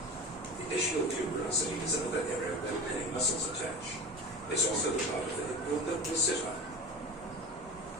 The ischial tuberosity is another area where many muscles attach. It's also the part of the hip bone that we sit on.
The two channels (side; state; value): both; normal; correlation 0.31